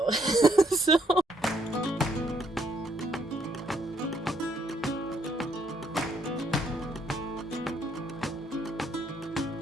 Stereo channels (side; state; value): both; normal; correlation 0.70